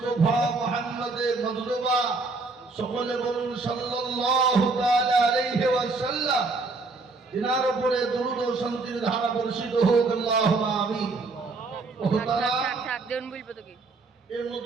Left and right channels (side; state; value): left; quieter; 3.7 dB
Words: মুহাম্মদে মজদুবা, সকলে বলুন সাল্লাল্লাহু তাআলা আলাইহি ওয়াসাল্লাম। তিনার উপরে দরুদ ও শান্তির ধারা বর্ষিত হোক, আল্লাহুম্মা আমিন। এই